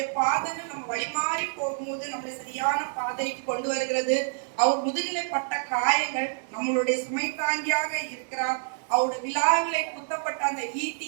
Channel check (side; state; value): left; silent; digital silence